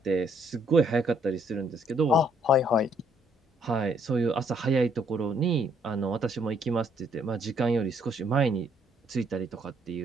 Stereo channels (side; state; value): both; normal; correlation 0.67